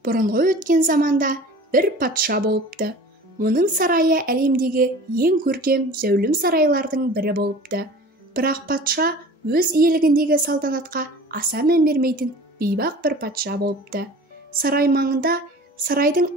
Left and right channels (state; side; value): normal; both; correlation 0.42